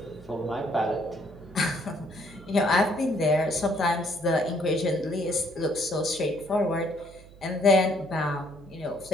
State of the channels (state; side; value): noise; right; hum, 21 dB below the sound